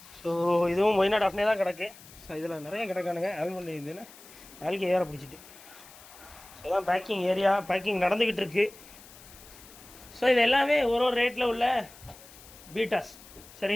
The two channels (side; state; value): left; noise; hiss, 20 dB below the sound